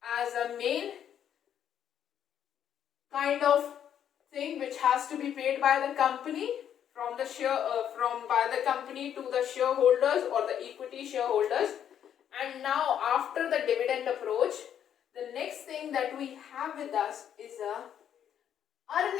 a main kind of thing which has to be paid by the company from the by the company to the shareholders or the equity shareholders. And now after the dividend approach, the next thing that we have with us is a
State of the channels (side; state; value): right; quieter; 9.5 dB